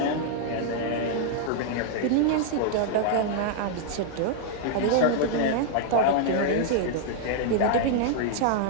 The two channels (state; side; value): different; both; correlation -0.01